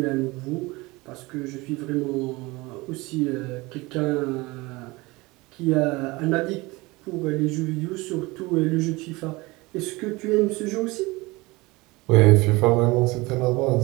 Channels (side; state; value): left; quieter; 22.8 dB